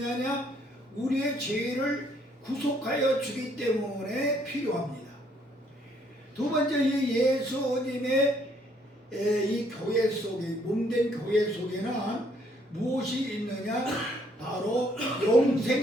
우리의 죄를 구속하여 주기 때문에 필요합니다. 두 번째, 이 예수님의 이 교회 속에, 몸된 교회 속에는 무엇이 있느냐? 바로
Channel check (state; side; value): normal; both; correlation 0.67